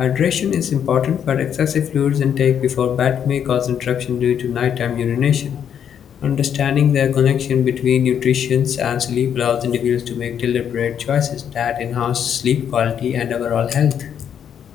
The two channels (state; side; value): quieter; right; 8.6 dB